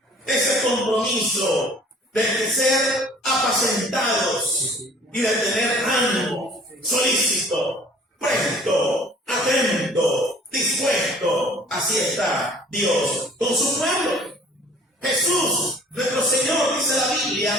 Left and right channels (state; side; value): normal; both; correlation 0.52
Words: Ese compromiso de ser apacentados y de tener ánimo, solícito, presto, atento, dispuesto. Así está Dios con su pueblo. Jesús, nuestro Señor, dice la